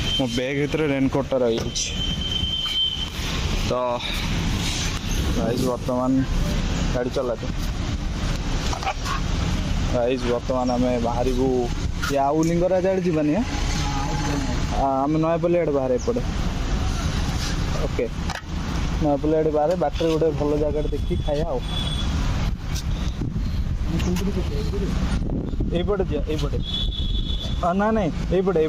मो बैग भर रेनकोटा रही तो गाइस बर्तमान गाड़ी चलाते गाइस बर्तमान आम बाहर या आउ लिंगराज आड़े जानी आम नयापल्ली आड़े बाहर एपटे ओके नयापल्ली आड़े बाहर बाटर गोटे भल जगह देखी खाया आईपटे यहीपटे ना नहीं यहीपटे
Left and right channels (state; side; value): identical; both; correlation 1.00